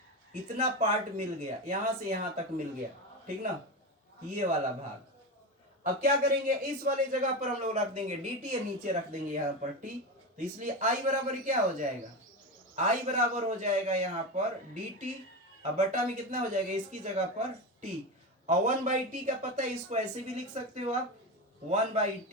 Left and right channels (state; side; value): normal; both; correlation 0.19